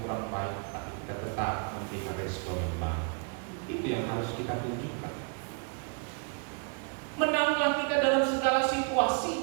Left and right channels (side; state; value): left; quieter; 39.1 dB